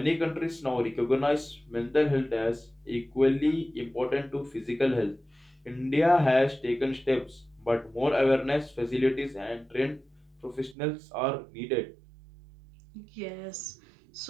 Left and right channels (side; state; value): left; drops out; at 10.8 s